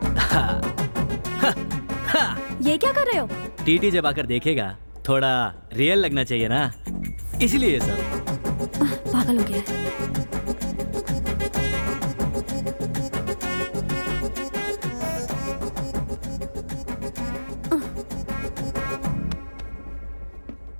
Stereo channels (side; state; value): both; inverted; correlation -1.00